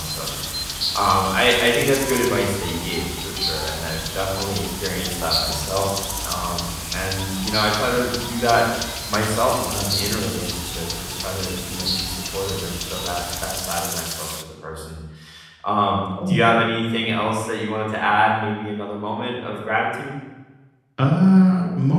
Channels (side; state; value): both; identical; correlation 1.00